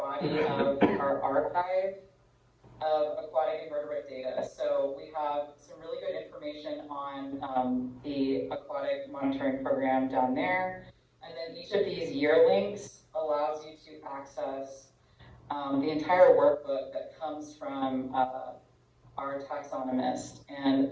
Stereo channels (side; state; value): both; identical; correlation 1.00